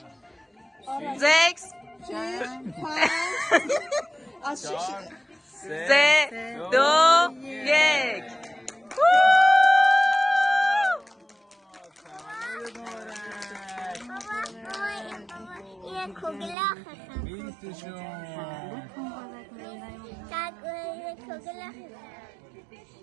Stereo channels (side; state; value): left; drops out; at 16.6 s